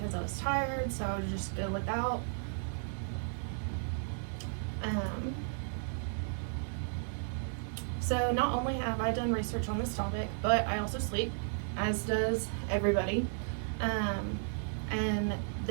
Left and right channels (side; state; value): left; silent; 55 dB below the other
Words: I was tired, so I would just go without. So not only have I done research on this topic, but I also sleep, as does everybody. And